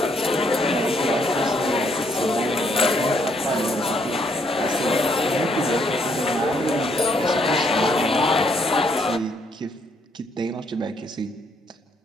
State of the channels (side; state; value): both; normal; correlation 0.71